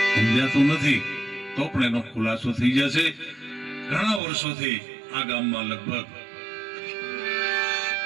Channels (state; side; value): drops out; left; at 4.2 s